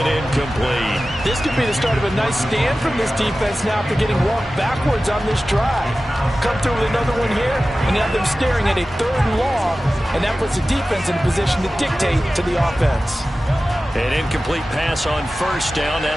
incomplete. This could be the start of a nice stand from this defense now after getting walked backwards on this drive. Come through with another one here, and have them him staring at a 3rd and long, and that puts the defense in a position to dictate to the offense. An incomplete pass on 1st down.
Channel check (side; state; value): both; normal; correlation 0.95